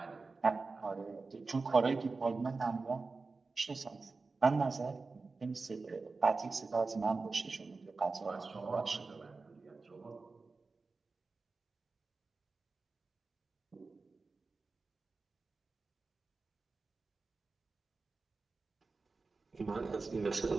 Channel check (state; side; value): quieter; left; 4.0 dB